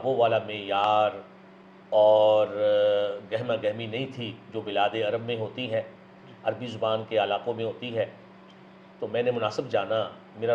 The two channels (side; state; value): both; identical; correlation 1.00